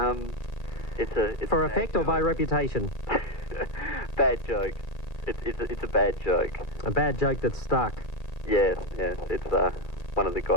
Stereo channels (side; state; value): right; late; 2.4 ms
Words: It's for effect or by reputation? Bad joke. It's a bad joke. A bad joke that's stuck. Yes. It's one of the